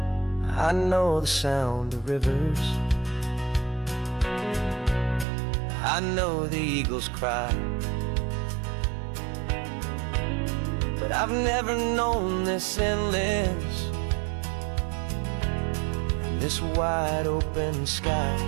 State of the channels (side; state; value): left; drops out; at 5.2 s